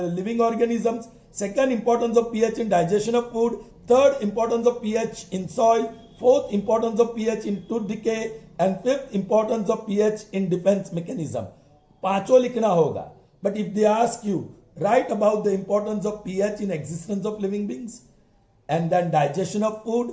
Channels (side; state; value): both; identical; correlation 1.00